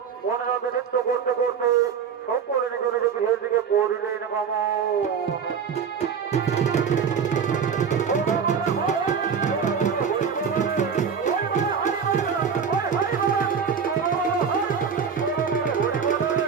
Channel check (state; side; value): quieter; left; 6.7 dB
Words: মনে মধ্যে নৃত্য করতে করতে সকলে নিজ নিজ গৃহের দিকে করিলেন গমন।